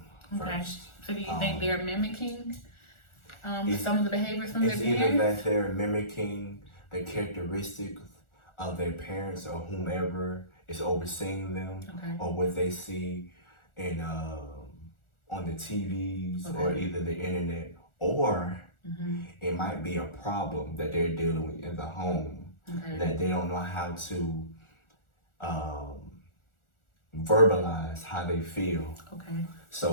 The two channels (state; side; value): late; right; 1.4 ms